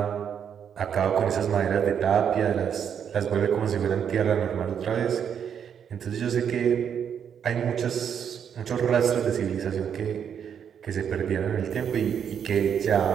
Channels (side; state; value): left; quieter; 8.1 dB